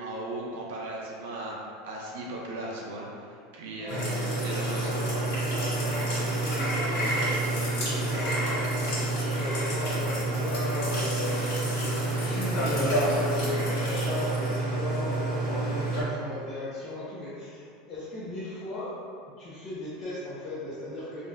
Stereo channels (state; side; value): normal; both; correlation 0.45